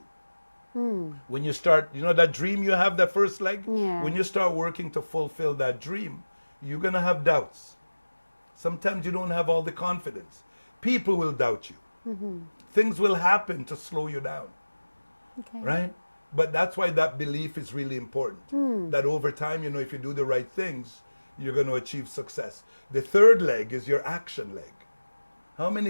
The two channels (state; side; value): inverted; both; correlation -1.00